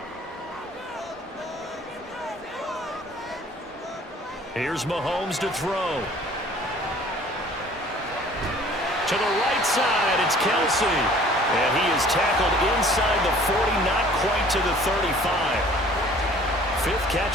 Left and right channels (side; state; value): both; normal; correlation 0.52